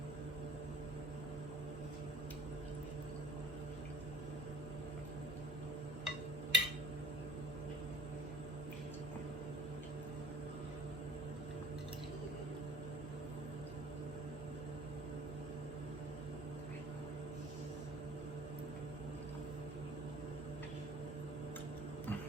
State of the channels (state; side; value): normal; both; correlation 0.49